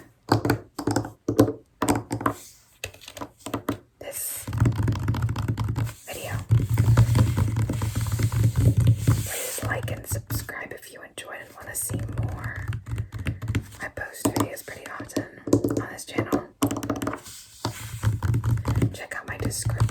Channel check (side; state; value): both; identical; correlation 1.00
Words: this video. Please like and subscribe if you enjoyed and want to see more. I post videos pretty often on this channel. Check out my